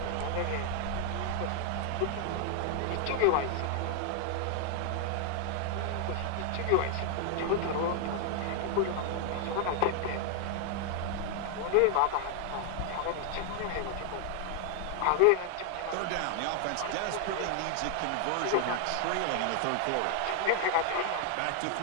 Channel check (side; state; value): both; different; correlation 0.00